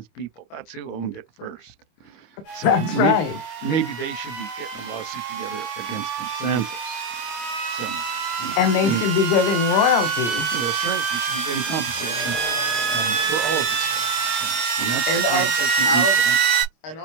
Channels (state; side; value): late; right; 25 ms